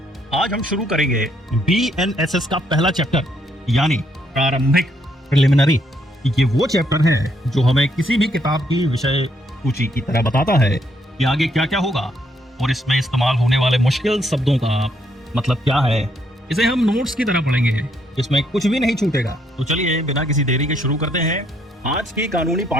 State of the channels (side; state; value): both; normal; correlation 0.72